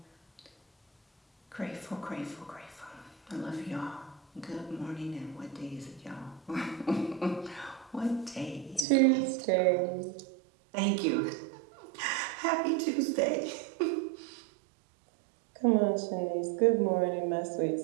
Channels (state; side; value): drops out; left; at 8.8 s